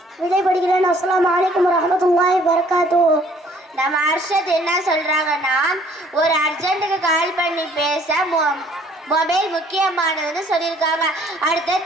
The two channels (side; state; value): both; normal; correlation 0.59